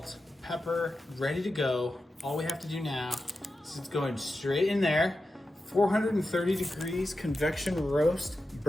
pepper, ready to go. All we have to do now is it's going straight in there. 430 degrees convection roast,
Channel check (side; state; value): both; normal; correlation 0.91